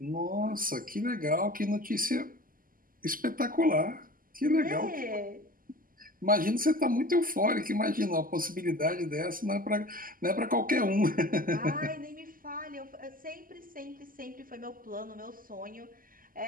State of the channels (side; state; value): left; late; 0.41 ms